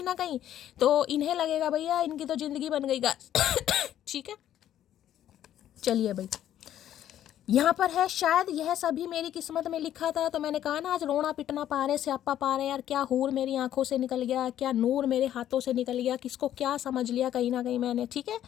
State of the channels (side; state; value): right; quieter; 11.4 dB